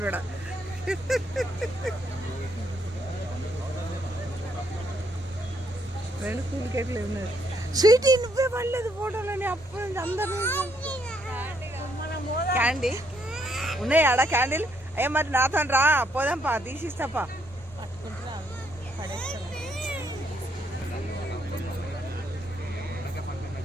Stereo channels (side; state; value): both; normal; correlation 0.72